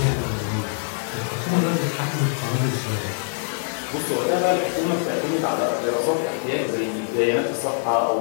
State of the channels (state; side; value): silent; right; 62 dB below the other